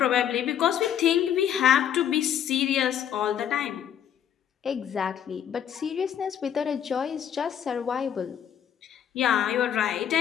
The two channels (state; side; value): quieter; right; 9.5 dB